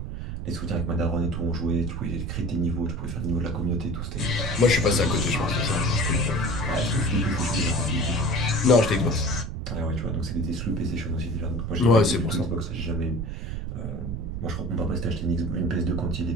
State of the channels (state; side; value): noise; right; rumble, 5 dB below the sound